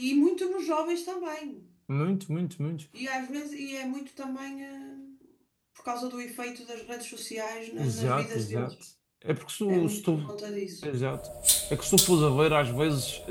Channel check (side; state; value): both; identical; correlation 1.00